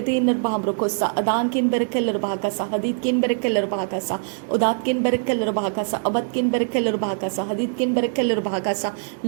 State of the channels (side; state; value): left; silent; digital silence